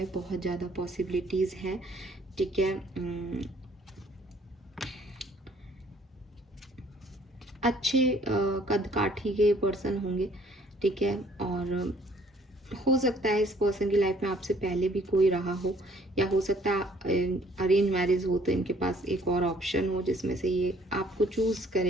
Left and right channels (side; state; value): both; normal; correlation 0.61